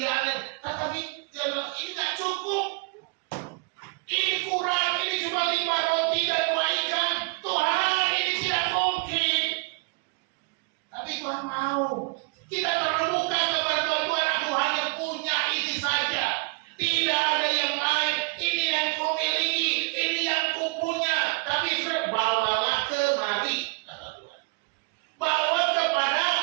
tetapi ini nggak cukup, ini kurang, ini cuma 5 roti dan 2 ikan. Tuhan, ini tidak mungkin. Tapi Tuhan mau kita terbuka kepada Tuhan. Aku hanya punya ini saja, tidak ada yang lain. Ini yang ku miliki, ini yang ku punya. Tapi bawalah kemari, kata Tuhan. Bawa kepada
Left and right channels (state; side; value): quieter; left; 30.0 dB